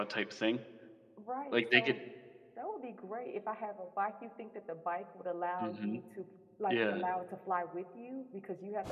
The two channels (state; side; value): identical; both; correlation 1.00